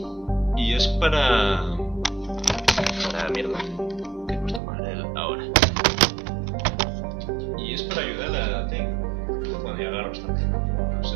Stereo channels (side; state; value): left; drops out; at 4.6 s